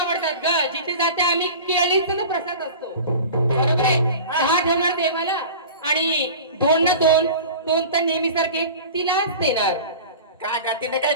ग. जिथे जाते आम्ही केळीचा प्रसाद असतो. बरोबर आहे. 10 ठेवणार देवाला आणि 2 ना 2 तर नेहमी सारखे तिलाच देणार. काय ग? तिने काय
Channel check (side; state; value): both; inverted; correlation -0.37